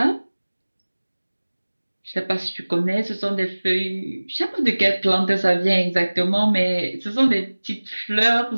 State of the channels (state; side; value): inverted; both; correlation -1.00